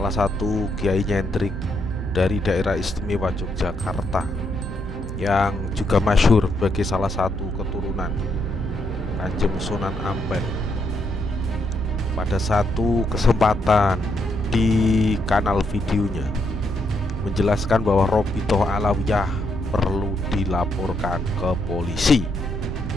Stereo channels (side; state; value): both; normal; correlation 0.77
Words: satu kiai nyentrik dari daerah istimewa Yogyakarta, yang juga masyhur sebagai salah satu keturunan Kanjeng Sunan Ampel, pada satu kesempatan di kanal videonya menjelaskan bahwa Robitoh Alawiyah perlu dilaporkan ke polisi.